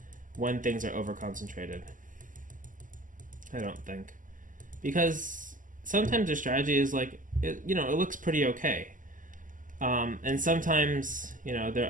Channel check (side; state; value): left; late; 0.38 ms